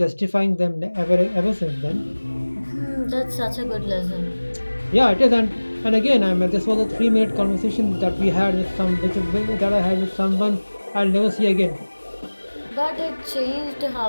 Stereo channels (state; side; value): inverted; both; correlation -1.00